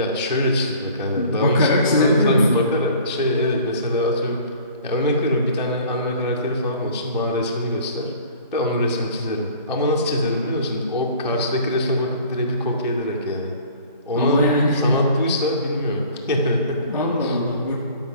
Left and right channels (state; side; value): inverted; both; correlation -0.48